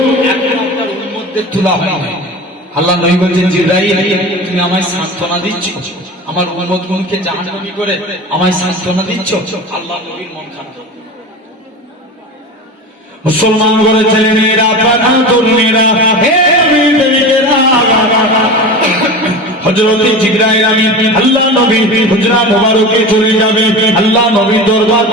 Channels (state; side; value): normal; both; correlation 0.30